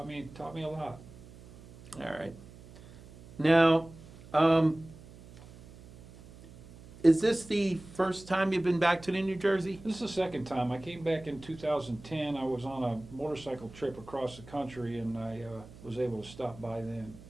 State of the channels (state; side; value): noise; right; hum, 19 dB below the sound